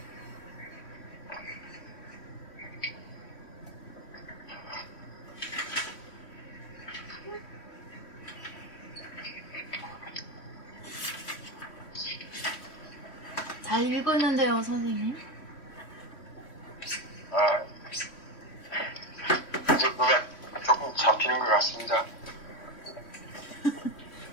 잘 읽었는데요, 선생님. 이제 뭐가 조금 잡히는 것 같습니다.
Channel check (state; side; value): late; right; 3.3 ms